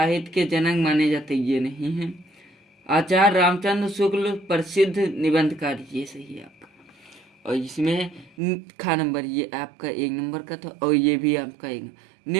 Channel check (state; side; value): drops out; left; at 8.3 s